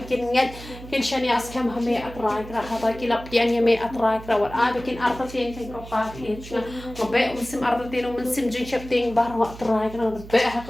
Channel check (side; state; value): right; noise; hum, 15 dB below the sound